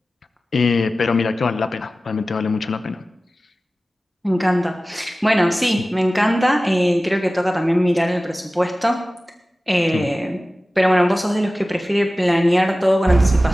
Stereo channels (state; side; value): normal; both; correlation 0.96